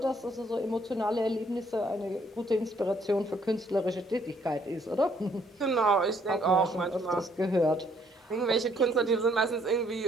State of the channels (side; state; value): both; normal; correlation 0.66